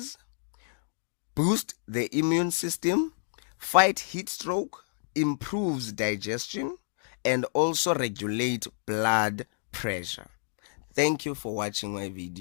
boost the immune system, fight heat stroke, improves digestion, and also regulate blood pressure. Thank you for watching my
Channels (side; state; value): right; silent; digital silence